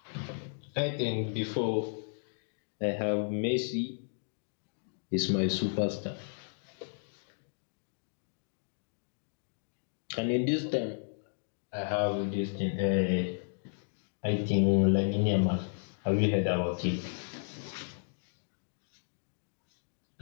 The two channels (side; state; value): right; silent; digital silence